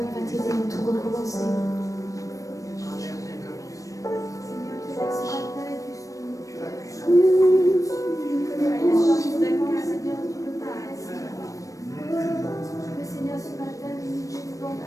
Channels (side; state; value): right; late; 0.16 ms